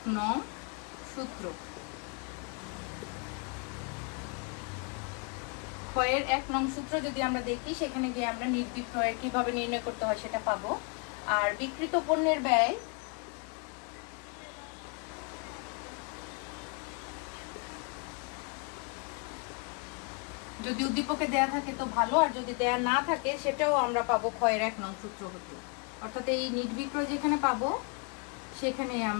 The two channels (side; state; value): right; quieter; 35.0 dB